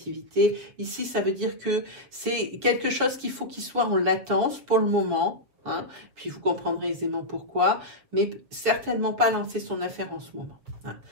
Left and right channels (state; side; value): late; left; 7.2 ms